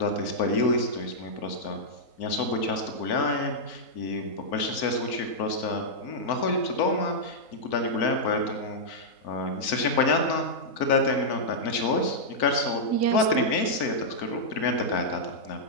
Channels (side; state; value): right; late; 4.5 ms